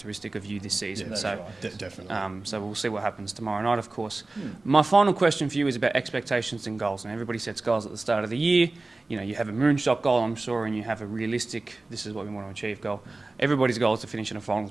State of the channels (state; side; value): quieter; left; 3.2 dB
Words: of you this season. Yeah, so right. Definitely. So we'll see what happens tomorrow night, of course. My final question for you is about expectations and goals. And everybody sets goals at the start of the year. You have a moonshot goal, I'm sure, and you have a realistic, this is what we want to achieve goal. Everybody's goal is to finish in a finals